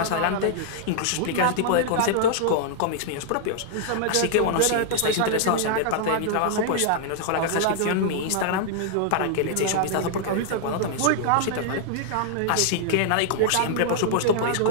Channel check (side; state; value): both; different; correlation -0.01